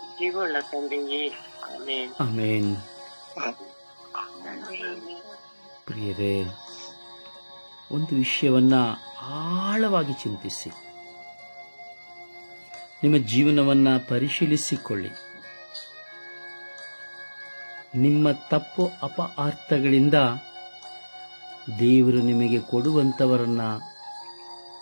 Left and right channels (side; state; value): both; inverted; correlation -1.00